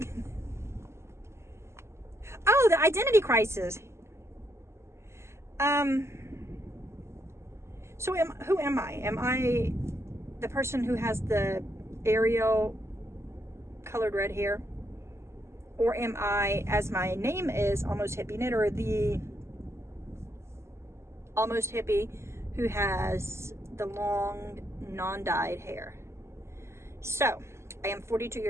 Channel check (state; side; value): late; left; 0.13 ms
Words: Oh, the identity crisis. So who am I? Am I the person who has the Ariel colored red hair? Or am I, as my name is, Almost Hippie Knitter, the almost hippie who has the long, non-dyed hair? So, I am 42